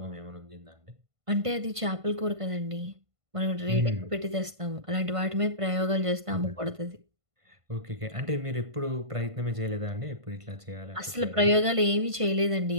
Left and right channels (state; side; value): late; left; 1.5 ms